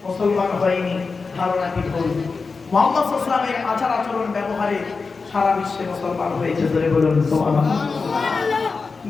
মুসলমান হয়নি ধারণাটি ভুল মুহাম্মদ সাল্লাল্লাহু আলাইহি ওয়াসাল্লামের আচার আচরণ ব্যবহারে সারা বিশ্বে মুসলমান হয়েছে ধরে বলুন সুবহানাল্লাহ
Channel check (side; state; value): right; quieter; 4.5 dB